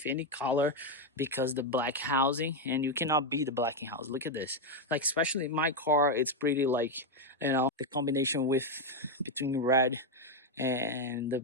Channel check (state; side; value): normal; both; correlation 0.04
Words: any color because the black housing, and you cannot beat the black house. Look at this. Like, especially in my car, it's pretty, like, you know, the combination with between red and